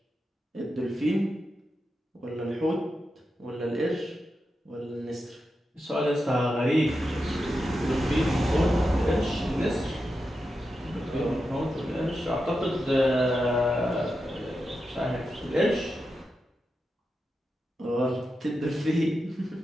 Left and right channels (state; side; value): normal; both; correlation 0.89